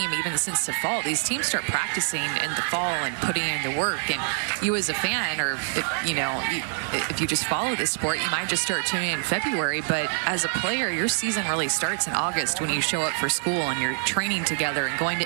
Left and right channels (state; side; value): silent; left; 61 dB below the other